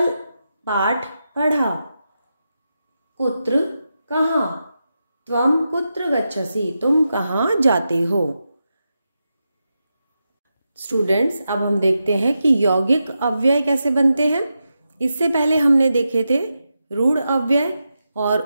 पाठ पढ़ा। कुत्र कहाँ, त्वं कुत्र गच्छसि, तुम कहाँ जाते हो। स्टूडेंट्स, अब हम देखते हैं कि यौगिक अव्यय कैसे बनते हैं। इससे पहले हमने देखे थे रूढ़ अव्यय और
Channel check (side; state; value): both; inverted; correlation -0.88